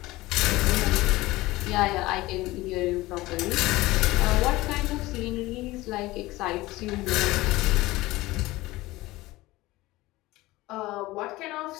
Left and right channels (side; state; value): right; quieter; 19.1 dB